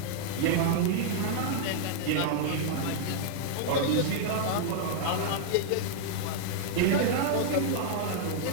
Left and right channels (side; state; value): both; different; correlation -0.01